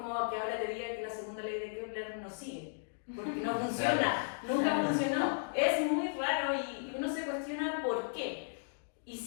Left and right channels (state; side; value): silent; right; digital silence